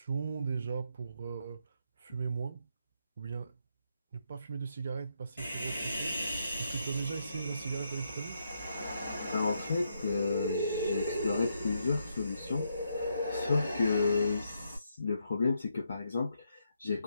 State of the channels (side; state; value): both; inverted; correlation -0.78